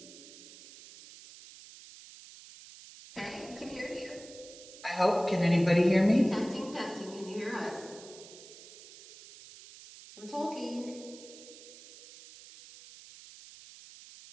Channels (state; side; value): noise; right; hiss, 18 dB below the sound